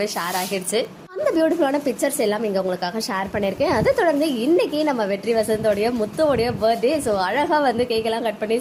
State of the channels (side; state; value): both; identical; correlation 1.00